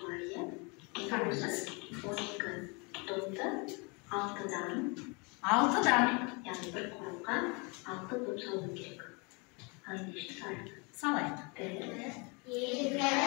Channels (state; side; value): quieter; right; 30.6 dB